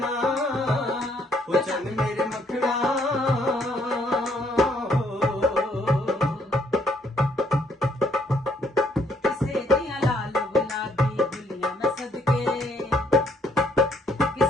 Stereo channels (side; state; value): both; normal; correlation 0.67